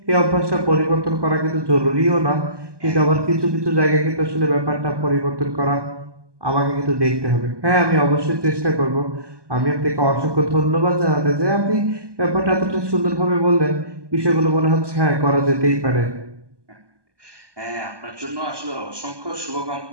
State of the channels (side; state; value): left; late; 1.2 ms